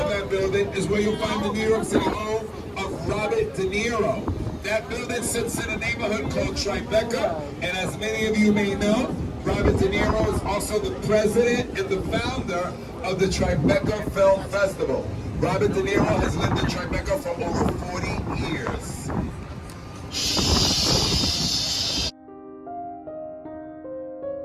that building is where you'll find the New York City home of Robert De Niro. That building sits in a neighborhood called Tribeca, and as many of you may know, Robert De Niro is also the president and the founder of the Tribeca Film Festival. Robert De Niro has lived in Tribeca for over 40 years.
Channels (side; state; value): both; identical; correlation 1.00